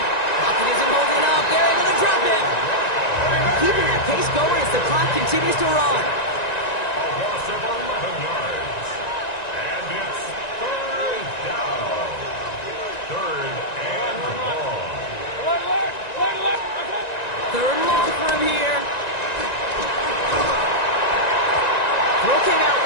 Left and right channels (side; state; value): right; late; 1.9 ms